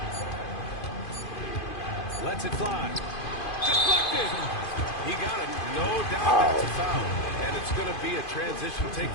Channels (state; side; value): late; right; 2.5 ms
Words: Lets it fly. Deflected. He got it. No doubt that's a foul. And it's going to be a transition take